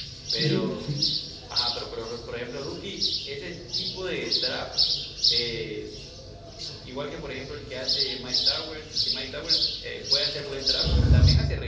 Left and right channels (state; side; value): identical; both; correlation 1.00